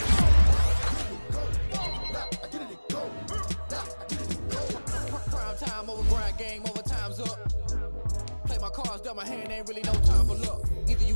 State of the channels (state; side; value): inverted; both; correlation -1.00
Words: Now I get it to go. Now I get it to go. Prime time over grind game, overtime's up. Play my cards, dealt my hand, ain't really no time for luck. Either you